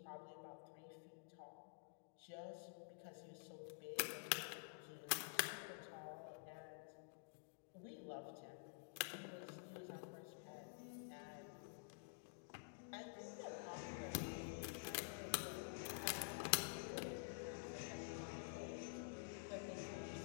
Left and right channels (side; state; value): right; silent; digital silence